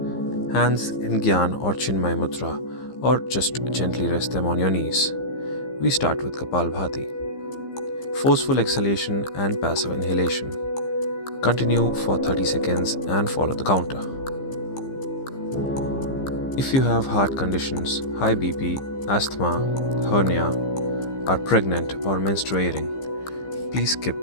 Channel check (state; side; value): late; right; 15 ms